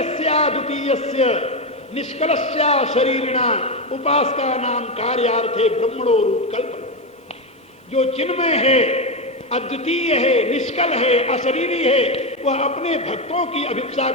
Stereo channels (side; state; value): both; normal; correlation 0.11